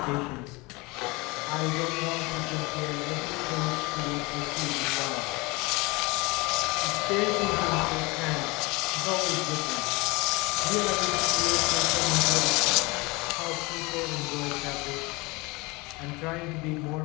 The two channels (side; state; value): right; quieter; 25.1 dB